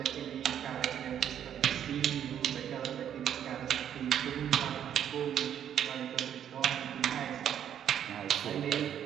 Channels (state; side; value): quieter; left; 9.6 dB